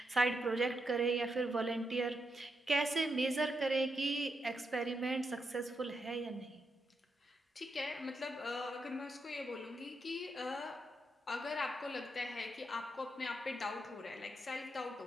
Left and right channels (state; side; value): normal; both; correlation 0.83